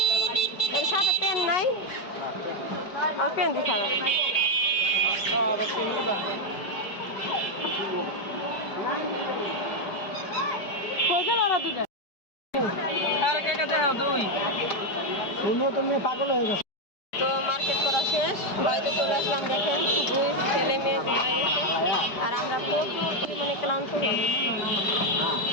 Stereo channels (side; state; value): right; late; 5.0 ms